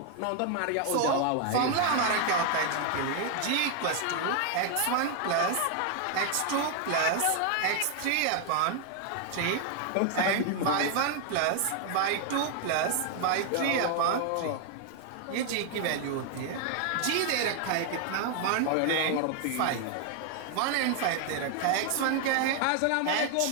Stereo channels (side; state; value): both; different; correlation 0.00